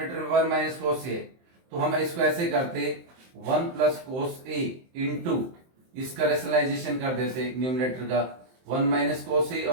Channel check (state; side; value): late; left; 23 ms